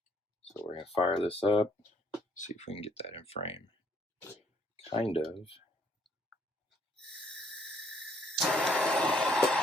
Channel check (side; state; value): both; normal; correlation 0.67